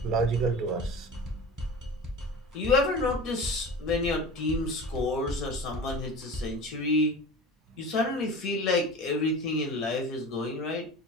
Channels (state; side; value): normal; both; correlation 0.35